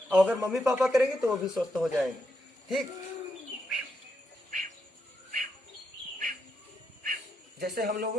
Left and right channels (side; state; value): both; normal; correlation 0.82